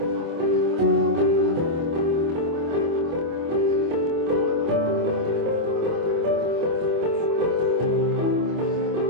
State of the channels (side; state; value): left; late; 25 ms